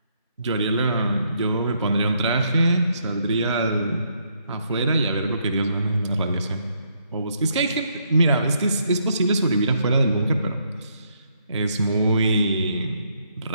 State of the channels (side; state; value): both; inverted; correlation -0.73